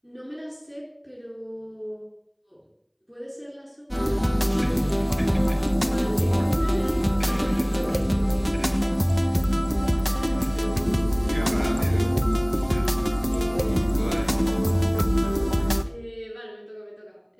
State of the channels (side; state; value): both; identical; correlation 1.00